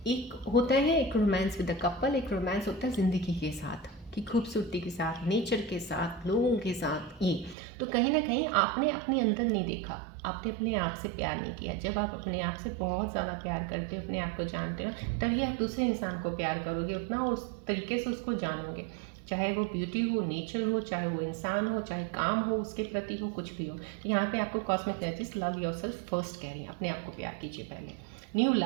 एक होता है एक रोमांस विद द कपल, एक रोमांस होता है ज़िंदगी के साथ, कि खूबसूरती के साथ, नेचर के साथ, लोगों के साथ। ये तो कहीं ना कहीं आपने अपने अंदर नहीं देखा, आपने अपने आप से प्यार नहीं किया। जब आप अपने आप से बहुत ज़्यादा प्यार करते हो, अपने आप को जानते हो, तभी आप दूसरे इंसान को प्यार करोगे, उतना उस तरीके से उसको जानोगे, चाहे वो ब्यूटी हो, नेचर हो, चाहे वो इंसान हो, चाहे काम हो उसके प्रति हो, कुछ भी हो। तो यहाँ पे आपको cosmic energies love yourself first कह रही हैं, अपने आप को प्यार कीजिए पहले। न्यू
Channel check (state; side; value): drops out; left; at 7.6 s